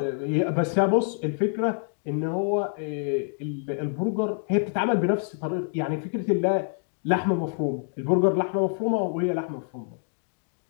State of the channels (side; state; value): right; silent; 60 dB below the other